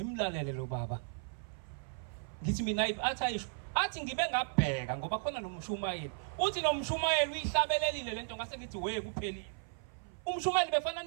lo baba. Ngithi mina athi ngibe ngabheka ngoba khona nomshumayeli. Uthi nomshumayeli uyihlabelelile lento ngase ngithi we kuphelile. Umshumayeli befana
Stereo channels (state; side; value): silent; left; 54 dB below the other